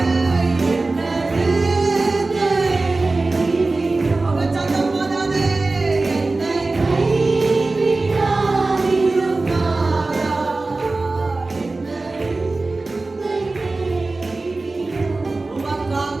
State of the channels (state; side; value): quieter; left; 3.4 dB